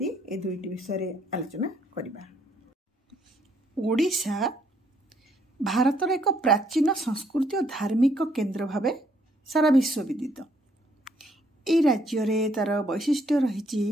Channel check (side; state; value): both; normal; correlation 0.69